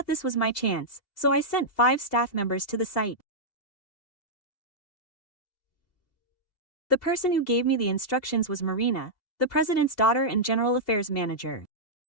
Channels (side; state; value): right; late; 2.7 ms